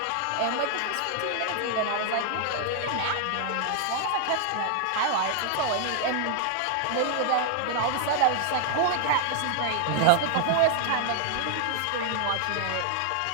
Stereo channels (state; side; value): different; both; correlation 0.00